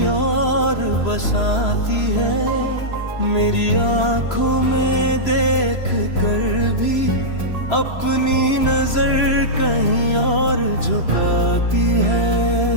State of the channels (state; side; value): late; right; 3.0 ms